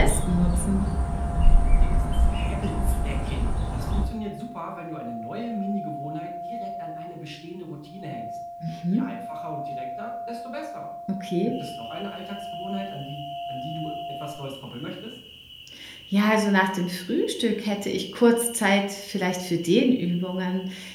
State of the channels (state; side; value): identical; both; correlation 1.00